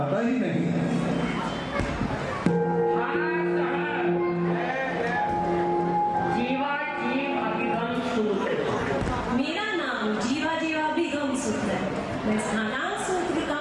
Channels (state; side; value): identical; both; correlation 1.00